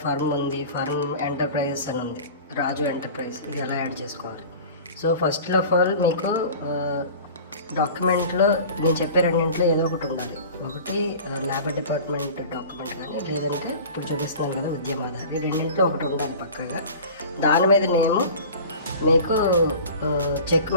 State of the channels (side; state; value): both; inverted; correlation -0.39